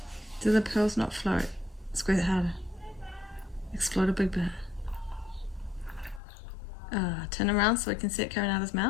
Do the pearls not float? Squeeze it harder. Explode a big bit. Turn around so we can see it coming out of his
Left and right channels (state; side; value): drops out; right; at 6.2 s